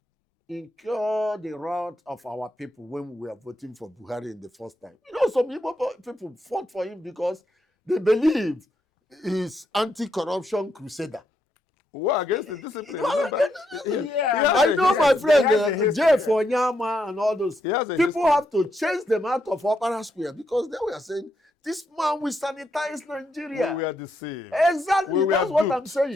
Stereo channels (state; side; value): normal; both; correlation 0.79